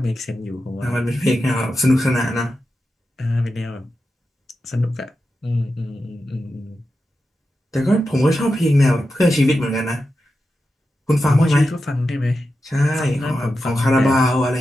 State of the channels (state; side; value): normal; both; correlation 0.90